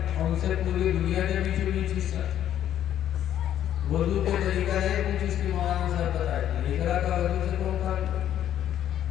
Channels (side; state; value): right; quieter; 11.0 dB